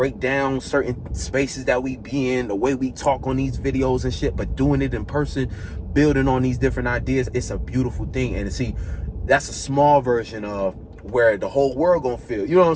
down certain spaces that we be in, the way we talk on these videos and shit, but doing it in person, building on these different ideas, it's a beautiful thing. And see, that's a small version of where the whole world gonna feel, you know what I'm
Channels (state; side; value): identical; both; correlation 1.00